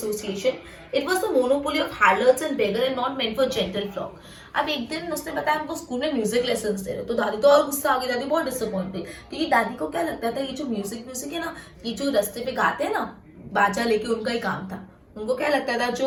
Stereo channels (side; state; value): both; identical; correlation 1.00